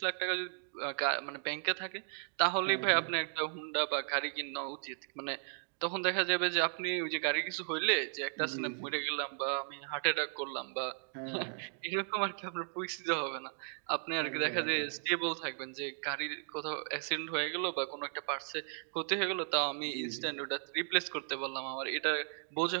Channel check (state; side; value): silent; left; 54 dB below the other